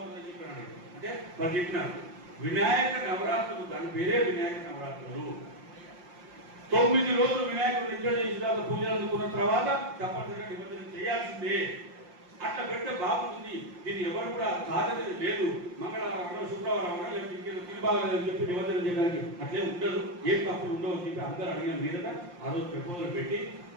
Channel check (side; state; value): left; late; 5.7 ms